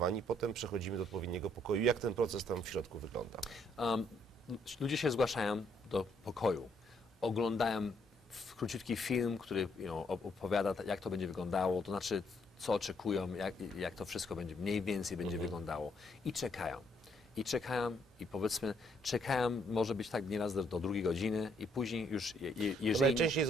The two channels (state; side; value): normal; both; correlation 0.70